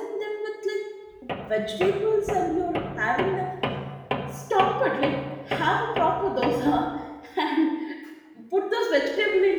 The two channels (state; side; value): identical; both; correlation 1.00